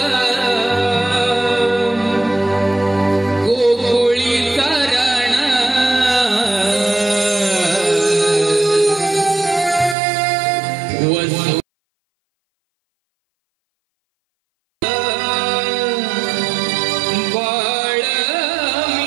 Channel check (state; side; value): drops out; left; at 10.0 s